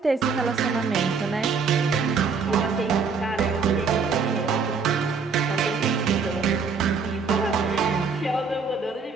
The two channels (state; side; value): quieter; left; 5.2 dB